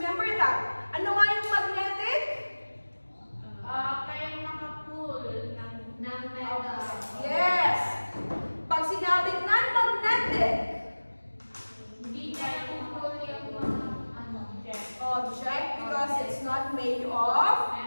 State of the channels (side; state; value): both; inverted; correlation -1.00